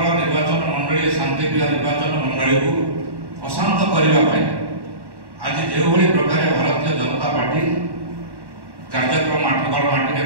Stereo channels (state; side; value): late; left; 1.1 ms